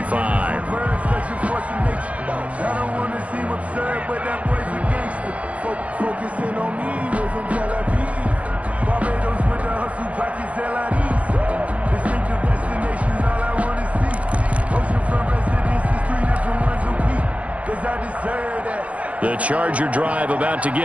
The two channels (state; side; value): late; left; 0.065 ms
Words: The Charger drive about to